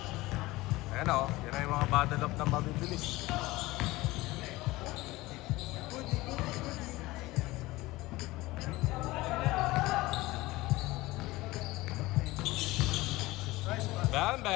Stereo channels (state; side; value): quieter; right; 19.7 dB